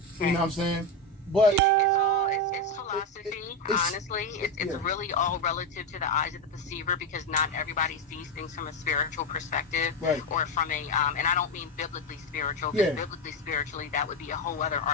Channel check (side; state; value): both; normal; correlation 0.11